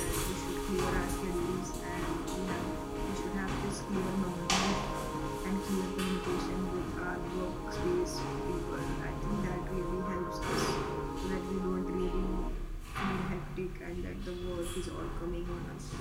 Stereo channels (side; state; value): both; identical; correlation 1.00